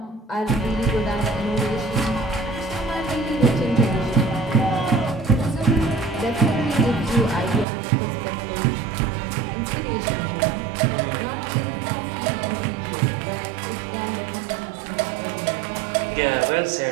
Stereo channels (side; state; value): left; drops out; at 7.7 s